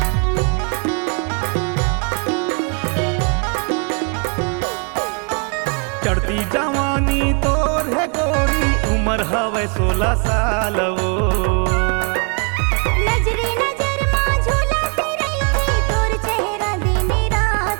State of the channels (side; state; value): left; quieter; 37.4 dB